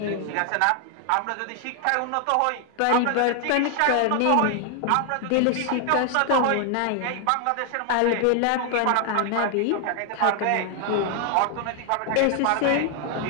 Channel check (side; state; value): both; different; correlation 0.00